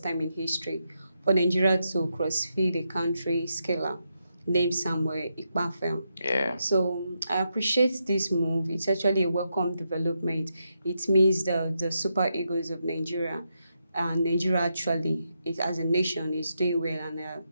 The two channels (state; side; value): inverted; both; correlation -0.83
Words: time in history for Nigeria to cross-feed a country scaler named Samuel Ikpafel. Yeah. So I appreciate this move. It's actually a welcome development. It means the Super Eagles of Nigeria and Nigeria actually, as a nation, is doing well, and